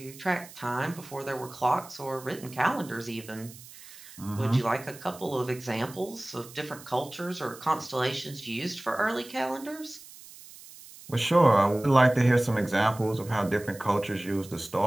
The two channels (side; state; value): right; noise; hiss, 18 dB below the sound